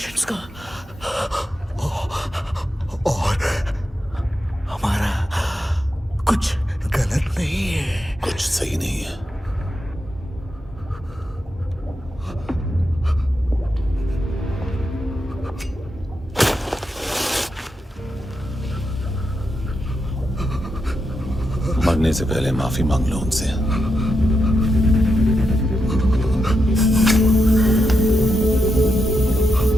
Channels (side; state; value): both; normal; correlation 0.85